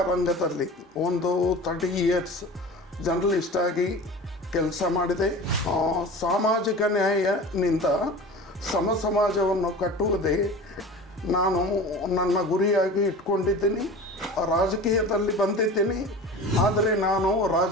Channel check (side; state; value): both; normal; correlation 0.36